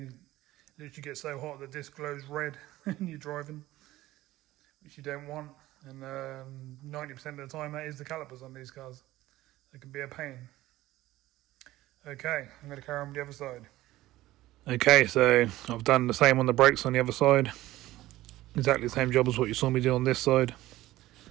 literally get so hot the disc glows red when you're driving, which you don't want. And 90% of the time that is the calipers on these cars. They can be a pain. Okay, I'm going to carry on with the other side. Okay, so I've done the same on the brakes on the other side. Exactly the same job as what you saw me do on this side.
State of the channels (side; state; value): left; quieter; 16.4 dB